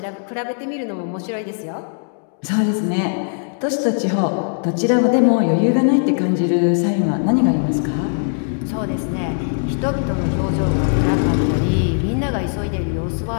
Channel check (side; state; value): right; silent; digital silence